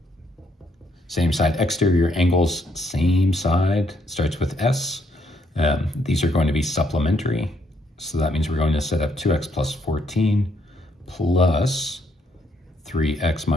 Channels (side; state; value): both; normal; correlation 0.72